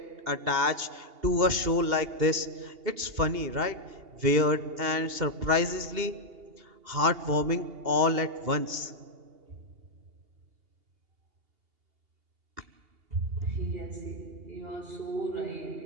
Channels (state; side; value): late; left; 2.8 ms